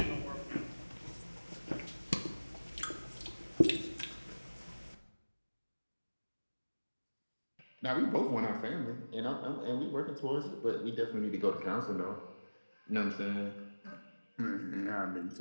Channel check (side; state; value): both; inverted; correlation -1.00